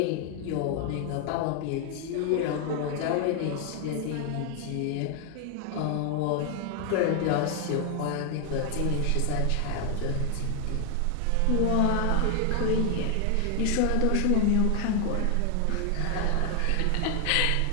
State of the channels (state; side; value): different; both; correlation 0.00